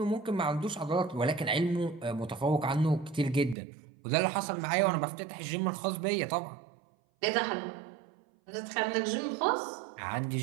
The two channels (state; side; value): drops out; left; at 3.6 s